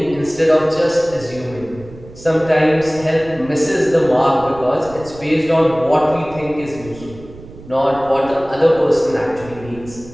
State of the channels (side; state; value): right; noise; rumble, 18 dB below the sound